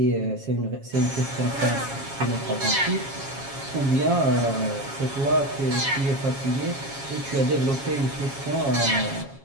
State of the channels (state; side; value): late; left; 7.3 ms